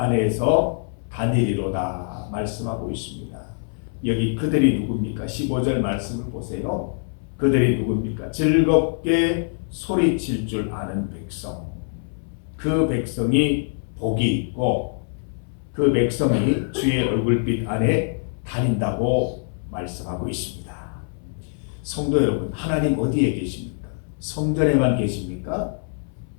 다니리로다 말씀하고 있습니다. 여기 그들이 누굽니까? 15절 말씀을 보세요. 그들이 누굽니까? 즐겁게 소리칠 줄 아는 백성. 그 백성이 복이 있고 그 백성이 주의 얼굴빛 안에 다닌다고 말씀하고 있습니다. 성도 여러분, 하나님 어디에 계십니까? 성전에만 계십니까?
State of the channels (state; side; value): silent; right; 63 dB below the other